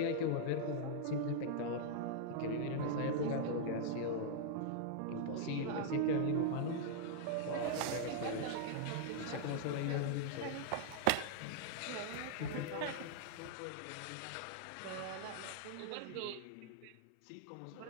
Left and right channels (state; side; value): different; both; correlation -0.01